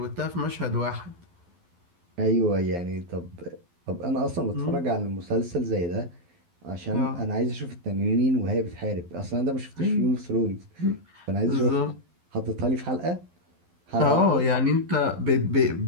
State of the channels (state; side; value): late; left; 12 ms